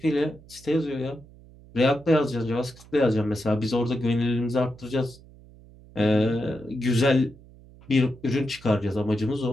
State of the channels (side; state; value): right; noise; hum, 23 dB below the sound